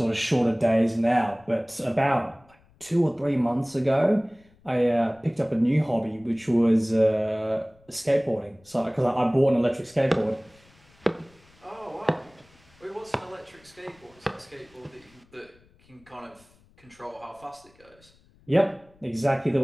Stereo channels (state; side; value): noise; left; rumble, 30 dB below the sound